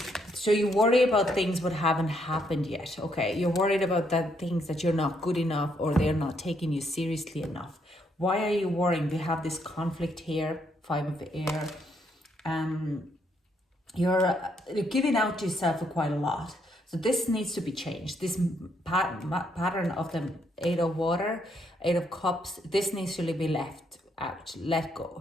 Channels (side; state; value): both; normal; correlation 0.74